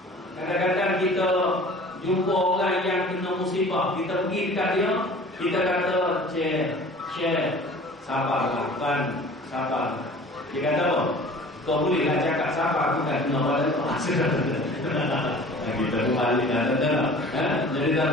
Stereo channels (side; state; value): both; normal; correlation 0.45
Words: Kadang-kadang kita jumpa orang yang kena musibah, kita pergi dekat dia, kita kata Syekh sabarlah kan, sabar. Dia kata apa? Kau bolehlah cakap sabar, bukan kena pada kau. Kita kembali jadi